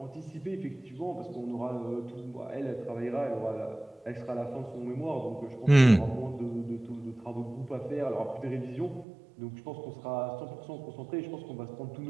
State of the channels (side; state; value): left; drops out; at 9.1 s